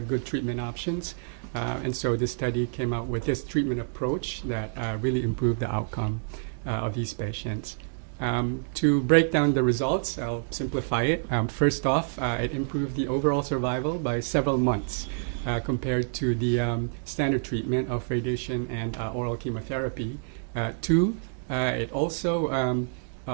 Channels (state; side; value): silent; left; digital silence